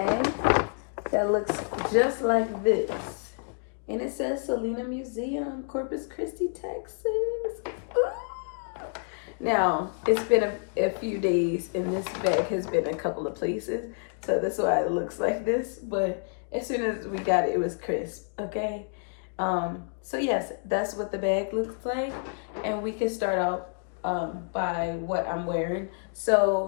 that looks just like this. And it says Selena Museum, Corpus Christi, Texas. Ooh. Now, it's been a few days and this bag has been a couple of places. So that's why it looks like this. But as soon as we got it, it was crisp, okay? So yes, that's what the bag looks like. And we can start out by what I'm wearing.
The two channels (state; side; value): silent; right; 59 dB below the other